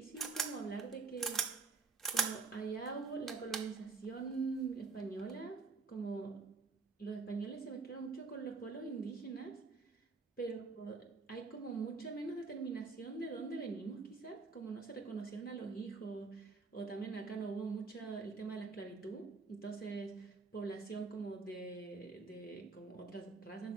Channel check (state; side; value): quieter; left; 4.4 dB